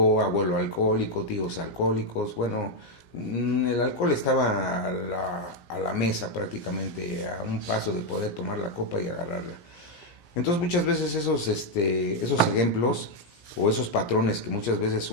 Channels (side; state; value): right; late; 17 ms